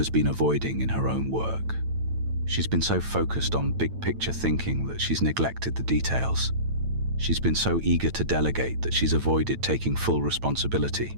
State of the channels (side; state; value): left; late; 9.0 ms